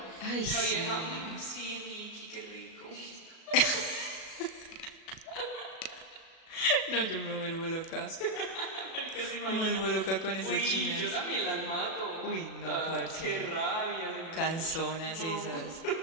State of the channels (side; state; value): right; late; 37 ms